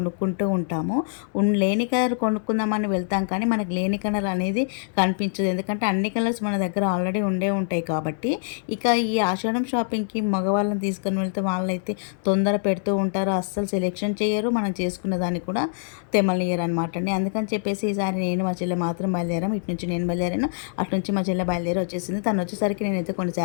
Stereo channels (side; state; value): right; silent; digital silence